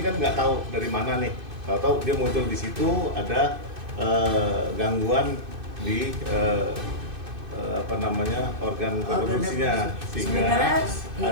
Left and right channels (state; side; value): late; left; 2.6 ms